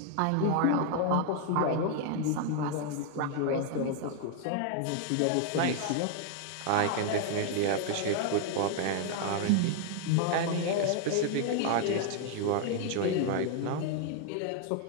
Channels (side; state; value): both; different; correlation 0.00